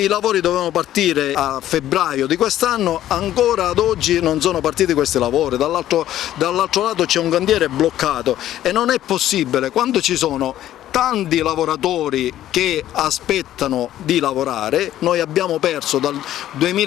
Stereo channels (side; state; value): right; quieter; 12.7 dB